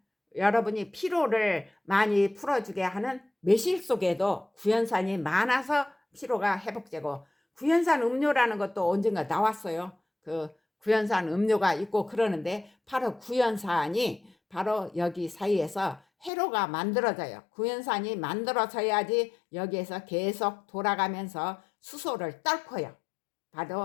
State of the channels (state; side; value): drops out; right; at 16.3 s